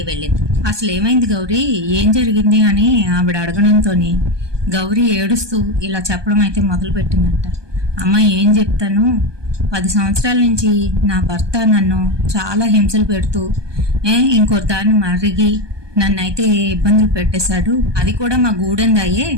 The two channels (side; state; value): left; late; 1.2 ms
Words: వెళ్ళింది. అసలు ఏమైంది గౌరీ, ఏం జరిగింది అని ఆవిడ అడగడంతో గౌరీ ఏడుస్తూ ఇలా చెప్పడం అయితే మొదలు పెట్టిందంట. అమ్మ ఏం చెప్తాను, 10 సంవత్సరాల నుంచి నా భర్త నన్ను చాలా హింసలు పెడుతూ ఇంకో దాన్ని మరిగి నన్ను అయితే ఇబ్బందులు పెట్టేశాడు, అది కూడా మా గూడెందాయే